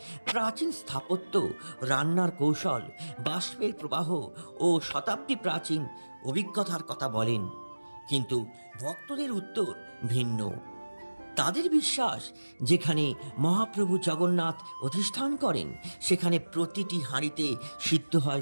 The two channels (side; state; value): both; inverted; correlation -1.00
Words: প্রাচীন স্থাপত্য, রান্নার কৌশল, বাষ্পের প্রবাহ ও শতাব্দী প্রাচীন অভিজ্ঞতার কথা বলেন, কিন্তু ভক্তদের উত্তর ভিন্ন। তাদের বিশ্বাস, যেখানে মহাপ্রভু জগন্নাথ অধিষ্ঠান করেন, সেখানে প্রতিটি হাঁড়িতে সিদ্ধ